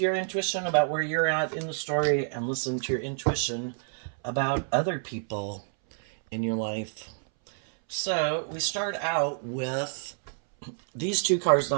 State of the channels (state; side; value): silent; left; 59 dB below the other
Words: your intuition about where you're at in the story and listen to your intuition about other people in your life. So we start out with these two cards